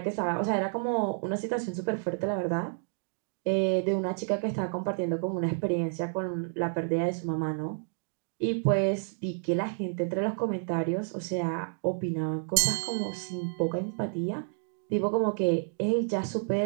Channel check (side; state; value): left; silent; digital silence